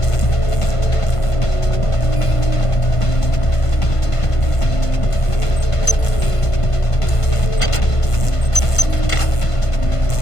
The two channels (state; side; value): late; right; 1.5 ms